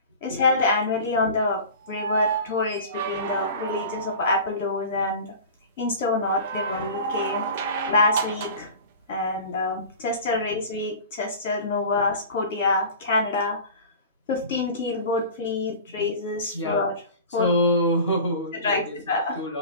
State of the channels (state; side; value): inverted; both; correlation -0.37